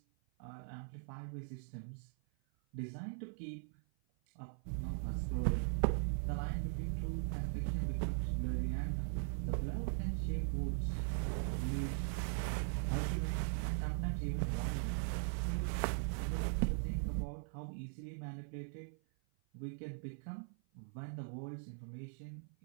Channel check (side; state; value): left; silent; 51 dB below the other